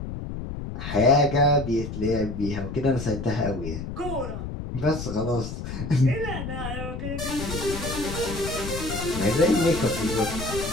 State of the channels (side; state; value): left; noise; rumble, 7 dB below the sound